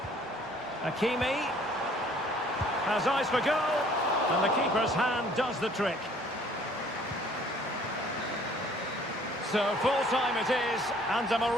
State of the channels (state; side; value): normal; both; correlation 0.57